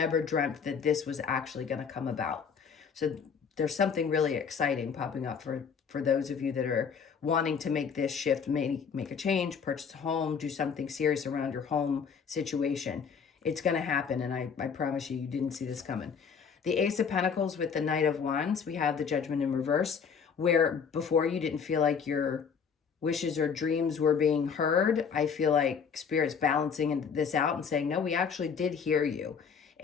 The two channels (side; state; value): right; quieter; 6.4 dB